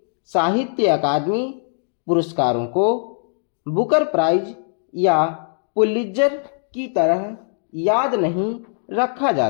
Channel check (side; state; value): right; silent; digital silence